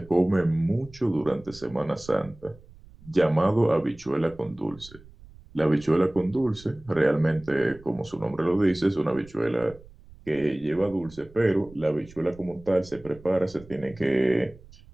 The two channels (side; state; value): right; noise; rumble, 22 dB below the sound